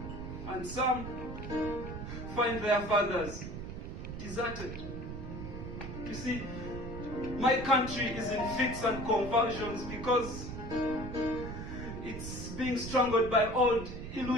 And some find their fathers deserted. You see, my country is in fits and convulsions because it's being strangled by old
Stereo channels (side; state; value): right; noise; rumble, 8 dB below the sound